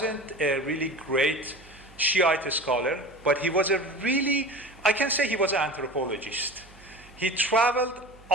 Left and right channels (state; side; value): noise; right; hum, 24 dB below the sound